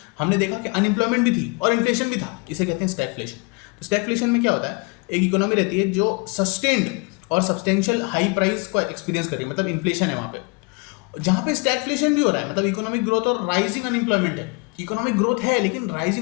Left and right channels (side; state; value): right; quieter; 30.1 dB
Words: हमने देखा कि अनएम्प्लॉयमेंट भी थी और इन्फ्लेशन भी था, इसे कहते हैं स्टैगफ्लेशन। तो स्टैगफ्लेशन में क्या होता है, एक इकोनॉमी रहती है जो सस्टेन्ड और सब्सटेंशियल हाई प्राइस को एक्सपीरियंस कर रही है, मतलब इन्फ्लेशन है वहाँ पे, जहाँ पे स्टैगफ्लेशन भी हो रहा है, मतलब इकोनॉमिक ग्रोथ और राइजिंग अनएम्प्लॉयमेंट है। इकोनॉमिक ग्रोथ है लेकिन